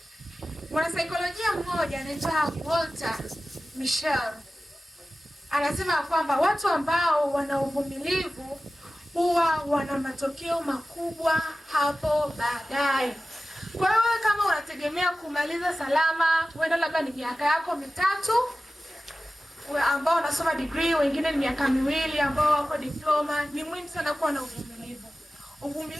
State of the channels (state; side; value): normal; both; correlation 0.96